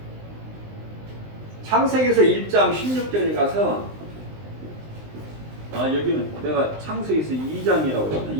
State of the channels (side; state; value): left; late; 19 ms